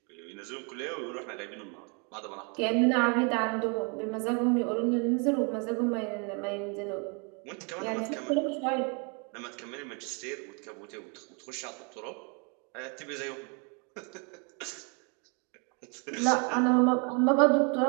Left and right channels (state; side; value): quieter; left; 35.4 dB